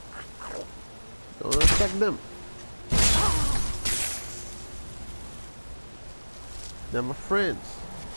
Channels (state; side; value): inverted; both; correlation -1.00